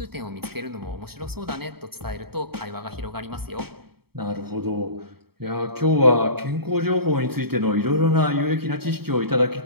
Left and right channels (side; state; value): left; late; 0.95 ms